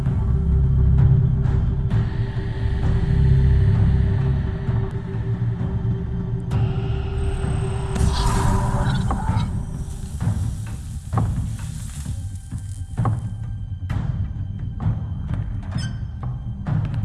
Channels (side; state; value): both; identical; correlation 1.00